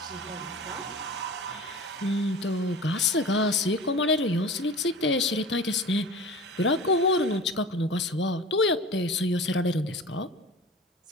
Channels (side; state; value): both; normal; correlation 0.36